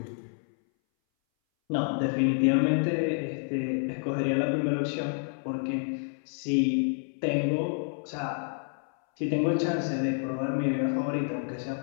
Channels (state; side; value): silent; right; 59 dB below the other